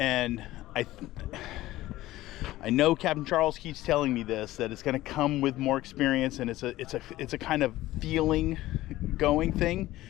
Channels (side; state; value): right; quieter; 16.3 dB